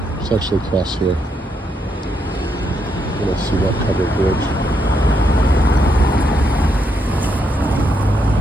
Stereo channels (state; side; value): normal; both; correlation 0.78